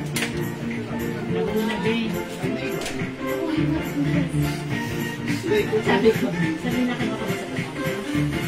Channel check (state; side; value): identical; both; correlation 1.00